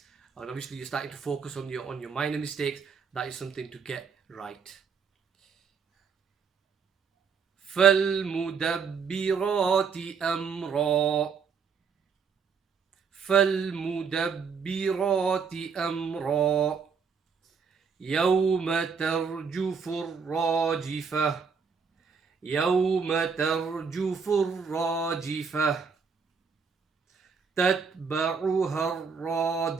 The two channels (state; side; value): quieter; left; 5.9 dB